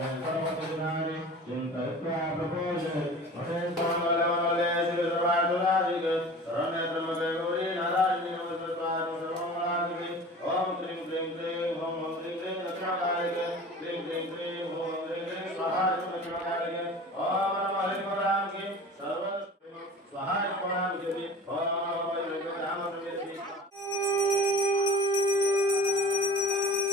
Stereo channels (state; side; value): normal; both; correlation 0.39